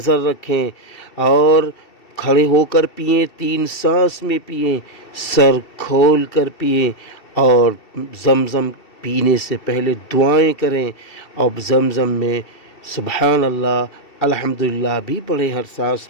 رکھیں اور کھڑے ہو کر پئیں، 3 سانس میں پئیں، سر کھول کر پئیں اور زمزم پینے سے پہلے دعائیں کریں اور زمزم میں سبحان اللہ الحمدللہ بھی پڑھیں ہر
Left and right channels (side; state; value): right; late; 2.7 ms